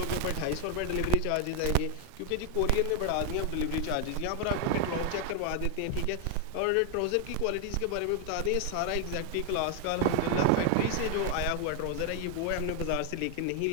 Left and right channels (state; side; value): different; both; correlation 0.00